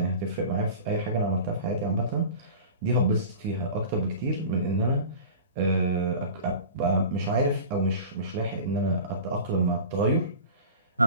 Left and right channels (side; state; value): both; inverted; correlation -0.37